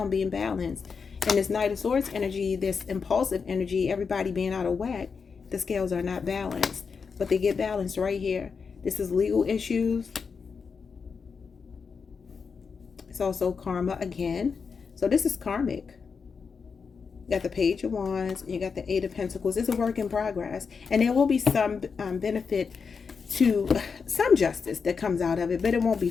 being balanced. And this Knight of Swords energy, this impulsive energy, everybody being out of whack, the scales are not balanced. But they get balanced right here. This is legal issues. It's also karma again. So this is karmic. You got the Page of Wands. And you got the Eight of Pentacles. It's a work in progress. And there will be some benefit to some justice that comes out of it. But it won't be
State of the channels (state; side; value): quieter; right; 5.5 dB